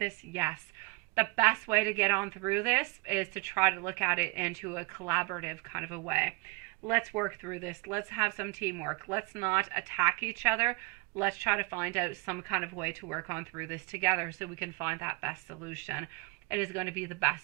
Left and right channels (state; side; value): quieter; left; 26.6 dB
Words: Yes. The best way to get on through this is to try to look at it into a collaborative kind of a way. Let's work through this. Let's have some teamwork. Let's not attack each other. Let's try to find out some kind of way to work on through this together so we can find that best solution. It is going to be the